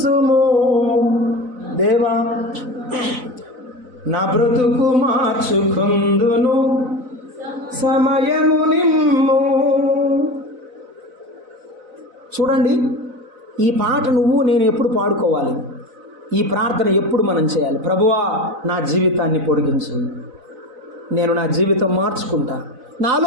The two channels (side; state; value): left; late; 4.0 ms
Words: దేవా నా బ్రతుకు మార్చుకుందును సమయము నిమ్ము. చూడండి, ఈ పాట నువ్వు నేను ఎప్పుడు పాడుకోవాలి? ఈ ప్రార్థన ఎప్పుడు మనం చేయాలి? ప్రభువా నా జీవితాన్ని పొడిగించు, నేను నా జీవితం మార్చుకుంటా,